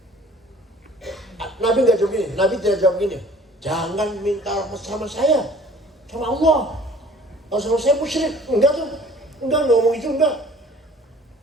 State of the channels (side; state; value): both; normal; correlation 0.50